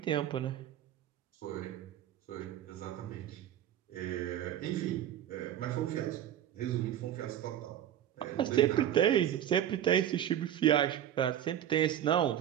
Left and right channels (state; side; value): quieter; left; 10.9 dB